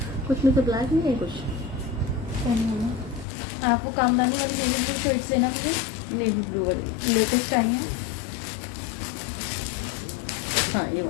कुछ में तो ब्लैक नहीं है कुछ। आपको कामदानी वाली नेवी ब्लू शर्ट्स लेना मुझे, नेवी ब्लू वाली। लेटेस्ट टाइम है। हाँ, ये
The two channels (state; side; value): drops out; right; at 3.2 s